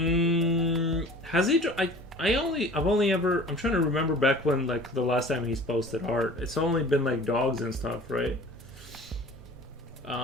he? I'm trying to remember back when, like, the last time he's posted art. It's only been like dogs and stuff, right?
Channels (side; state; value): both; normal; correlation 0.44